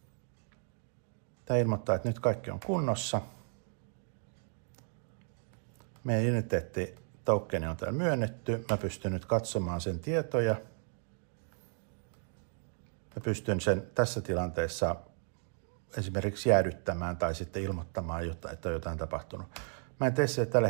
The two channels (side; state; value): left; silent; 55 dB below the other